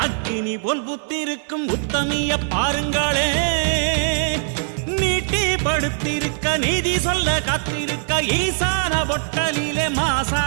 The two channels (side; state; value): left; silent; digital silence